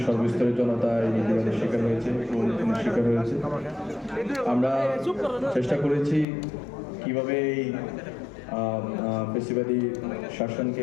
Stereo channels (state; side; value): drops out; right; at 6.2 s